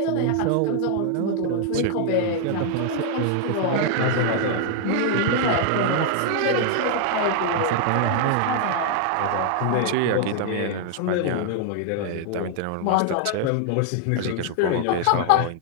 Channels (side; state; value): both; different; correlation 0.00